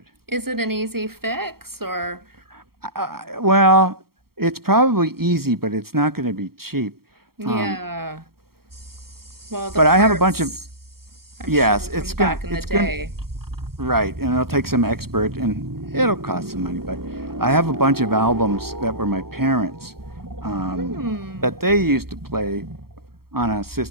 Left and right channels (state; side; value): late; left; 0.94 ms